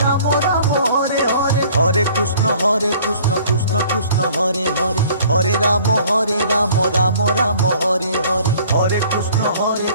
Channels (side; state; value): both; inverted; correlation -0.53